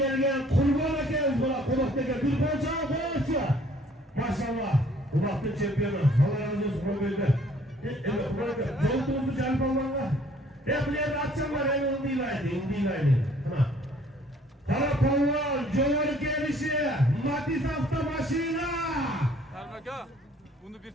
Kurban'a geliriz buna. Konak'taki bir konçağı koyarsa. Maşallah. Konak'ın şampiyonu. Allah razı olsun Kurban'da. Evet Kurban'da. Yolduğumuzu canım Allah'la. Hep buraya atacaklar. En onu değil aynı. En değil aynı. Tamam. Karakollar, Cömert gelişi, Matiz hafta başıyla. Ermeka, bunu bir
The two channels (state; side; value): normal; both; correlation 0.58